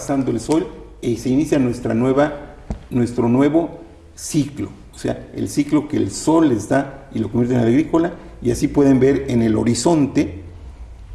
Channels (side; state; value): both; identical; correlation 1.00